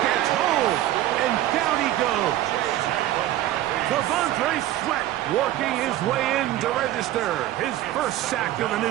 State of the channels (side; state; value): left; quieter; 13.9 dB